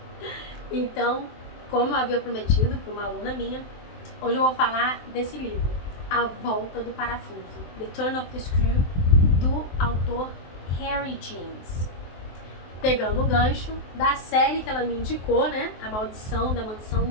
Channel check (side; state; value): right; late; 23 ms